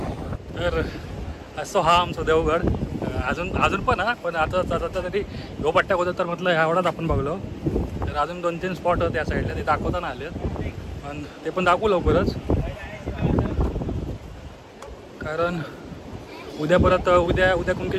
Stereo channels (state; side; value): identical; both; correlation 1.00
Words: तर असं हा आमचा देवगड. अजून पण पण आता तरी ह्यो पट्ट्या होतं तर म्हटलं एवढाच आपण बघलो. तर अजून 2-3 स्पॉट त्या साईडला ते दाखवताना आलेत पण ते पण दाखवू लवकरच. कारण उद्या परत उद्या